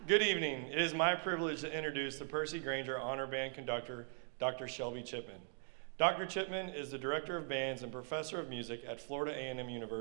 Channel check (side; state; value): left; silent; 51 dB below the other